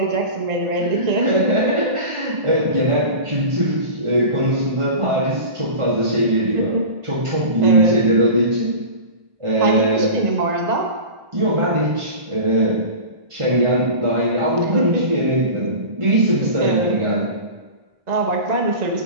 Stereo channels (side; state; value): left; late; 1.4 ms